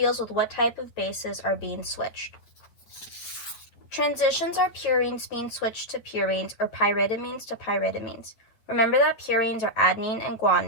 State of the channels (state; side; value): late; right; 8.7 ms